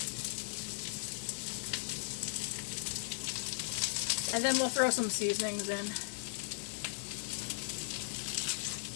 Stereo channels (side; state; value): right; silent; digital silence